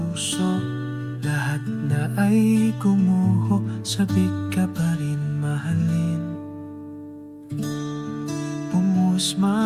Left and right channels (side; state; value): both; identical; correlation 1.00